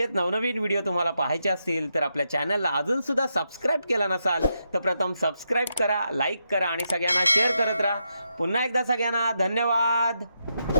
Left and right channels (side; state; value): both; inverted; correlation -0.83